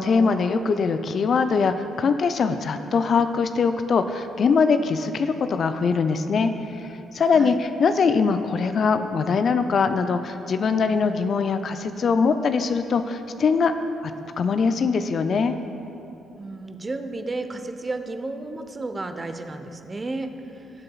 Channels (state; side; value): quieter; right; 4.5 dB